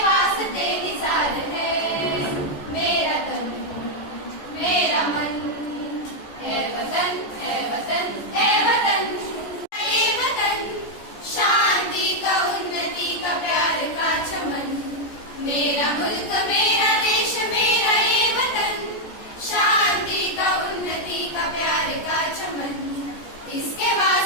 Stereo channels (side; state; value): right; late; 14 ms